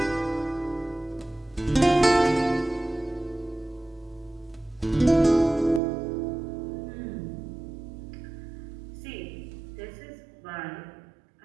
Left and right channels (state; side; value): drops out; left; at 5.8 s